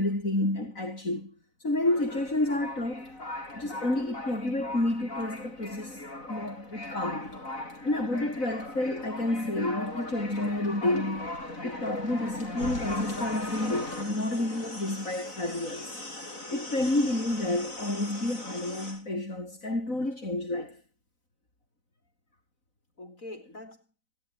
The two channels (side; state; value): right; late; 4.0 ms